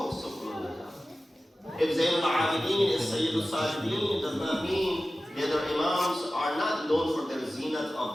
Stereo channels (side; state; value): both; normal; correlation 0.95